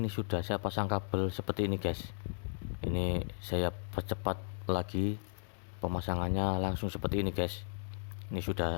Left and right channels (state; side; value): silent; right; digital silence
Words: sudah saya pasang kabel seperti ini guys. Ini saya percepat lagi pemasangannya, langsung seperti ini guys. Ini